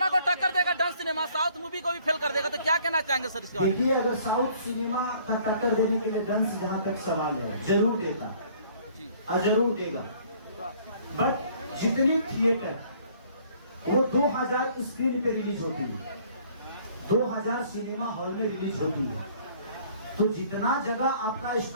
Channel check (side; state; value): both; inverted; correlation -0.58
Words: को टक्कर देगा डांस सिनेमा, साउथ मूवी को भी फेल कर देगा, तो क्या कहना चाहेंगे सर इसके बारे में? देखिए, अगर साउथ सिनेमा का टक्कर देने के लिए डांस जहाँ तक सवाल है, जरूर देता और जरूर देगा। बट जितनी थिएटर वो 2000 स्क्रीन पे रिलीज होती है, 2000 सिनेमा हॉल में रिलीज होती है, तो जितना जगह आपका